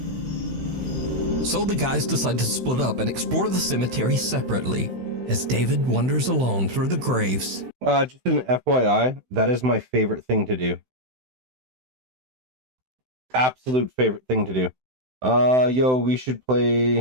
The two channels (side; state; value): left; late; 16 ms